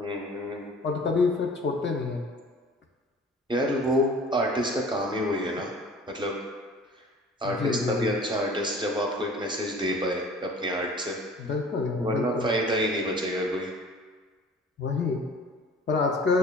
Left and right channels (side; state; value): both; normal; correlation 0.46